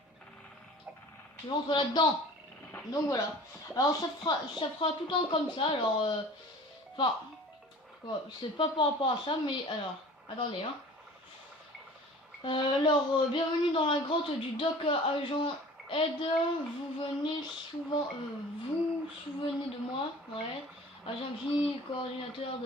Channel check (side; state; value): both; normal; correlation 0.44